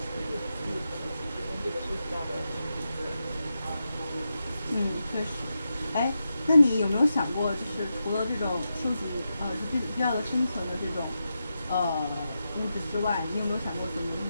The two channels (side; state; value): both; inverted; correlation -0.88